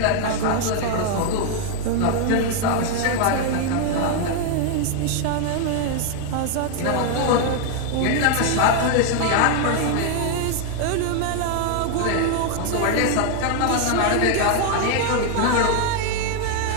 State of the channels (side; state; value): both; different; correlation 0.00